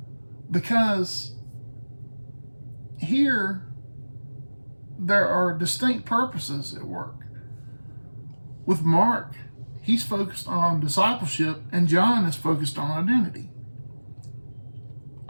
because here there are distinct purposes at work. With Mark, he's focused on discipleship, and John is focused on identity.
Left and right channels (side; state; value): both; inverted; correlation -1.00